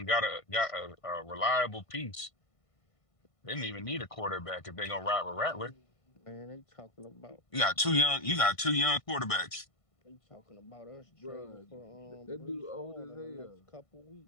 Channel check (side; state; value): right; late; 1.5 ms